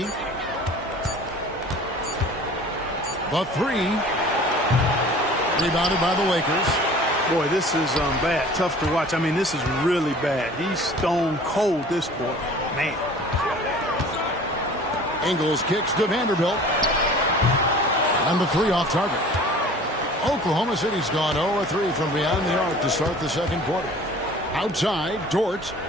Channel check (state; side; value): normal; both; correlation 0.46